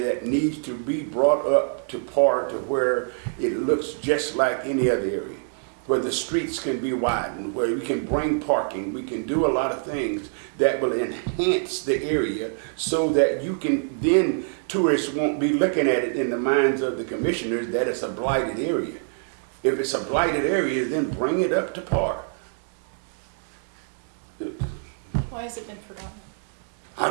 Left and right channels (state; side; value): silent; left; digital silence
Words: that needs to be brought up to par to where it looks just like any other area, where the streets can be widened, where we can bring parking, we can do a lot of things that will enhance the area so that you can, then tourists won't be looking at it in the minds of the commissioners that it's a blighted area. If it's a blighted area, then bring it up to par. Why has it been forgotten? I